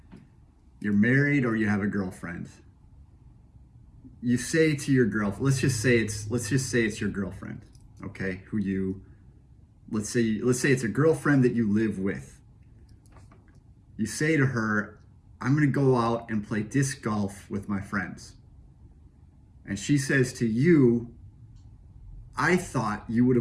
You're married or you have a girlfriend. You say to your girlfriend, let's just say it's your girlfriend, okay? Let's say it's a girlfriend that you live with. You say to her, "I'm going to go out and play disc golf with my friends." And she says to you, "I thought you would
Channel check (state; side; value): identical; both; correlation 1.00